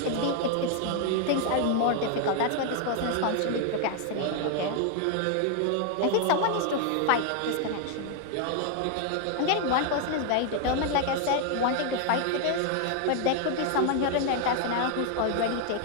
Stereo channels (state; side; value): different; both; correlation 0.00